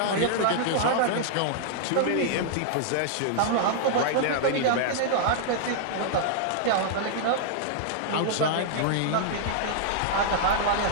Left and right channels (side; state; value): both; different; correlation -0.01